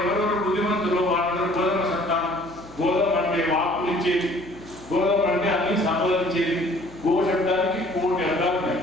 ఎవరెవరు బుద్ధిమంతులు, వాళ్ళందరూ గోధుమ సంతానం. గోధుమ అంటే వాక్కులు ఇచ్చేది, గోధుమ అంటే అన్ని సంపాదించేది. గో శబ్దానికి 1,000 అర్థాలు ఉన్నాయి.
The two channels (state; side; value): noise; left; hum, 23 dB below the sound